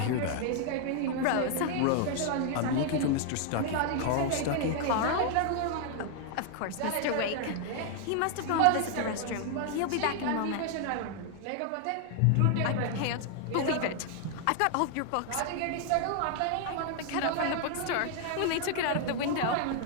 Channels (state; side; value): different; both; correlation 0.00